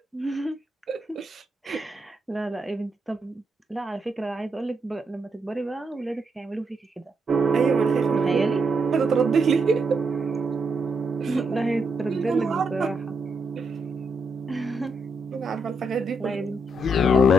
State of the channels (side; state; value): both; normal; correlation 0.79